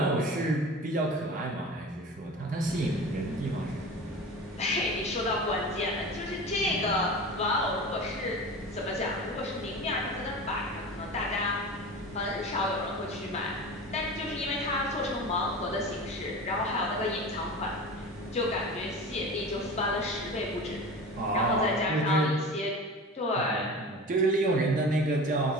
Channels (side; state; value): both; normal; correlation 0.33